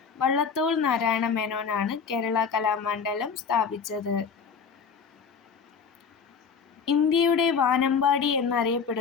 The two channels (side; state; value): right; quieter; 6.0 dB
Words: വള്ളത്തോൾ നാരായണ മേനോനാണ് കേരള കലാമണ്ഡലം സ്ഥാപിച്ചത്. ഇന്ത്യയുടെ വാനമ്പാടി